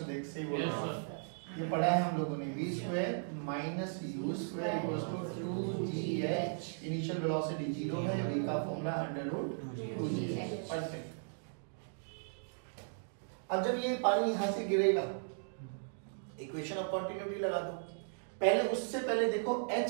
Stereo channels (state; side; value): silent; left; digital silence